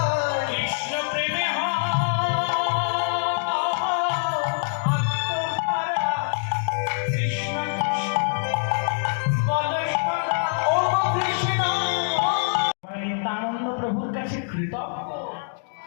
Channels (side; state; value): right; silent; digital silence